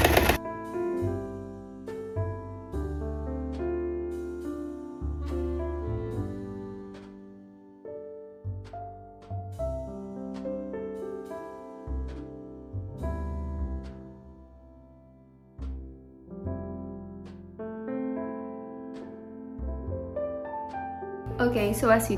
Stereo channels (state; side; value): identical; both; correlation 1.00